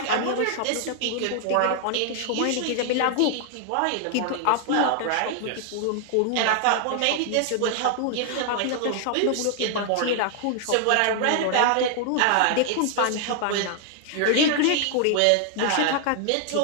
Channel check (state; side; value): different; both; correlation 0.00